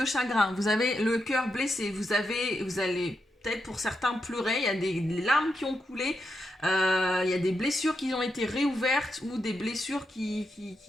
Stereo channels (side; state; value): both; normal; correlation 0.84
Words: chagrin. Vous avez le cœur blessé, vous allez peut-être pour certains pleurer, il y a des larmes qui ont coulé, il y a des blessures qui ont été réouvertes ou des blessures